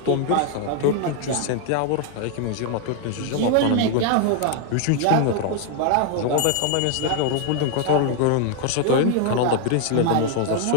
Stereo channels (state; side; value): different; both; correlation 0.01